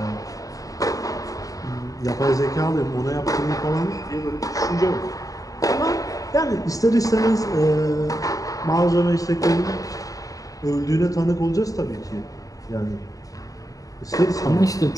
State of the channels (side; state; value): right; late; 0.17 ms